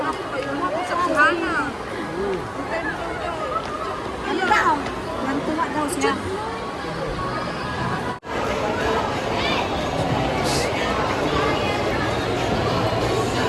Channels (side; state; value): both; identical; correlation 1.00